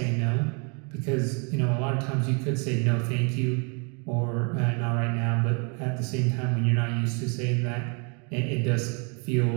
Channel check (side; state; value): left; quieter; 35.6 dB